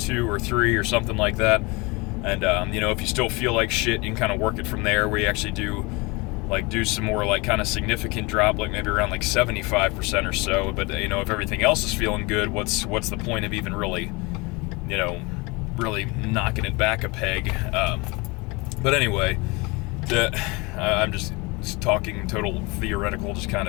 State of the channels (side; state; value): right; quieter; 26.3 dB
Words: or 3 or something like that. And if you still feel like shit, you can kind of work it from there, where you actually do some more kind of significant drop, like maybe around 75% or so. But if everything else is feeling good, what's the point of even really knocking it back a peg? But anyway, I'm just talking total theoretical, just kind